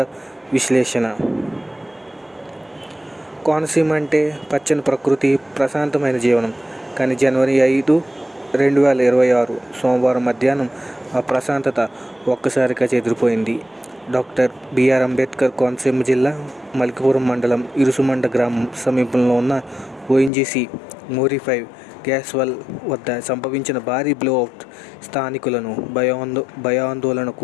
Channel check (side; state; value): right; drops out; at 20.3 s